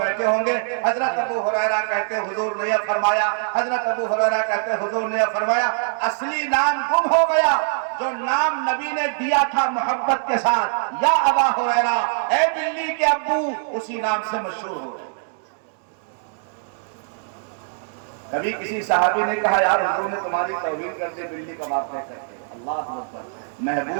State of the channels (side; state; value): left; silent; digital silence